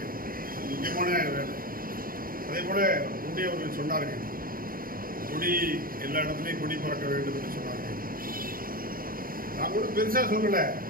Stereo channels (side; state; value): left; late; 0.42 ms